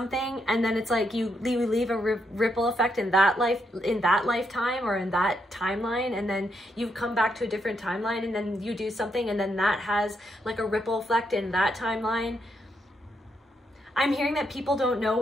and then it's like you leave a ripple effect in that lifetime or in that timeline, and then you come back to a different timeline, and then you do something, and then that has like a ripple effect in that timeline. I'm hearing that people don't know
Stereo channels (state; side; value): normal; both; correlation 0.79